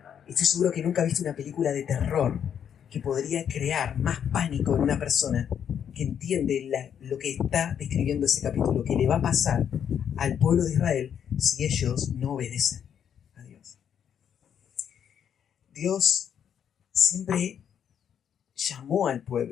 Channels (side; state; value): right; quieter; 8.6 dB